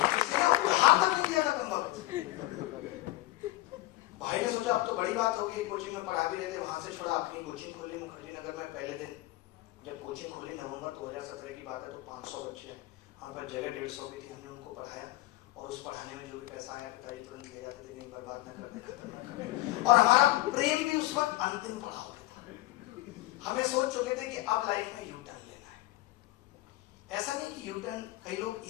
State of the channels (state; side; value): quieter; right; 18.2 dB